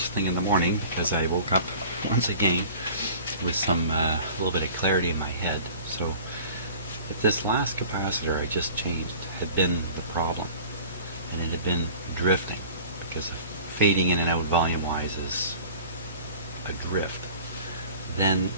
thing in the morning as I woke up once again with some little bit of clarity in my head. So if this last capacitor I just changed had been the problem, and it had been drifting, because fading in and out volume-wise is a drift, then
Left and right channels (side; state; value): both; inverted; correlation -0.43